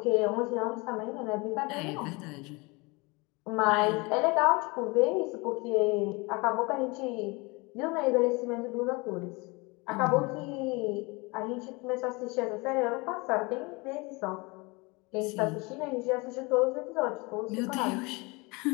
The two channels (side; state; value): right; quieter; 26.6 dB